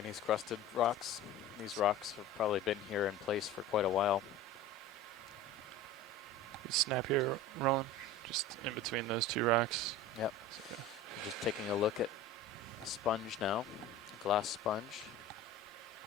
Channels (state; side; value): normal; both; correlation 0.36